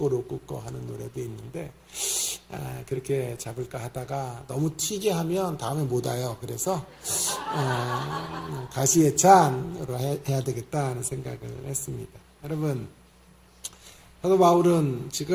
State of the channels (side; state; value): both; identical; correlation 1.00